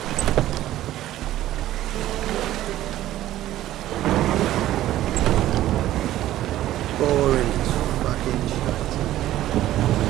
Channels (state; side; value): quieter; left; 14.0 dB